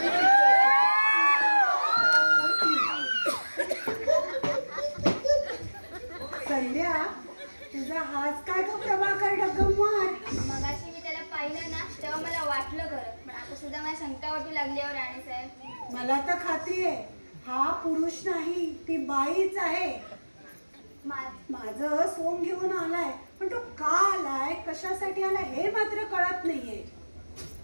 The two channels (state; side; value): inverted; both; correlation -1.00